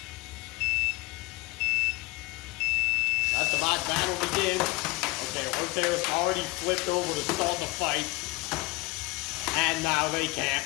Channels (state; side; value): quieter; right; 23.0 dB